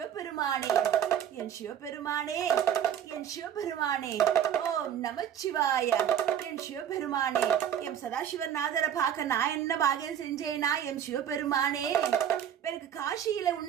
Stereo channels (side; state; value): left; quieter; 9.5 dB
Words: என் சிவபெருமானே, என் சிவபெருமானே. ஓம் நமச்சிவாய. என் சிவபெருமானே, என் சதாசிவன் நாதரை பார்க்க நான் என்ன பாகியம் செஞ்சேனா? என் சிவபெருமானே. எனக்கு காசியில